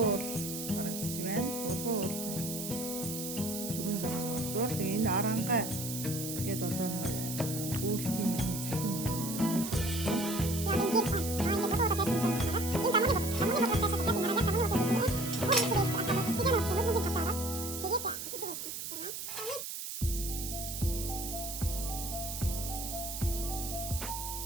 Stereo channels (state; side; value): noise; right; hiss, 6 dB below the sound